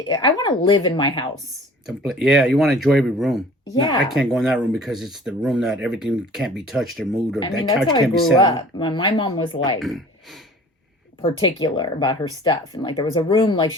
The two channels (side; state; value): both; normal; correlation 0.47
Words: want to live in my house. Yeah, you want to enjoy every room. Yeah. No, I can't go in that room because it's the room that everything can't be touched or moved, or I that mean, couch that's how I can't be grew sat up. My mom was like particular about her stuff. And like there was a room, like